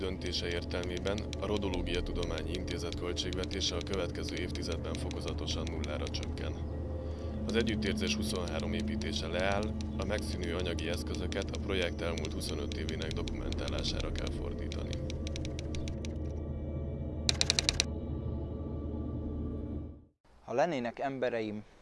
értelmében a Rodológia Tudományi Intézet költségvetése a következő évtizedben fokozatosan nullára csökken. Az együttérzés 23 építése leáll, a megszűnő anyagi eszközöket a projekt elmúlt 25 évének dokumentálására kell fordítani. Ha lennének embereim,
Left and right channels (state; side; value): identical; both; correlation 1.00